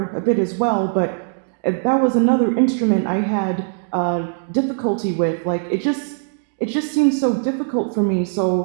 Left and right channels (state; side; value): silent; left; digital silence